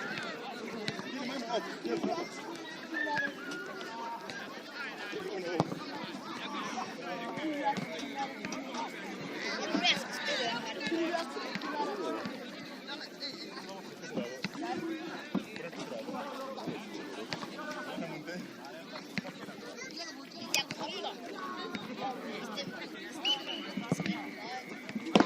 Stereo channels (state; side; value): identical; both; correlation 1.00